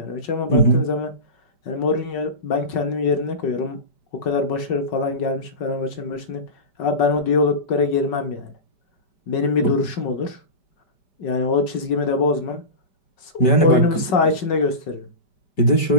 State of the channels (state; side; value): late; right; 5.4 ms